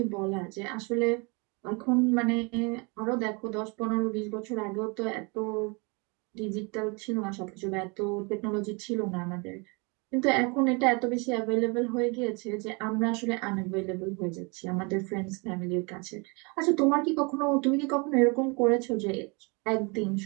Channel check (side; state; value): left; quieter; 30.6 dB